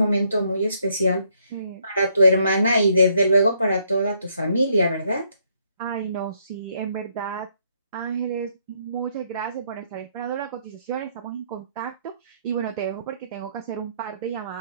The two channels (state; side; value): inverted; both; correlation -0.71